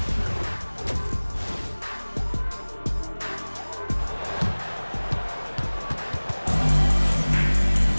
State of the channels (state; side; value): inverted; both; correlation -1.00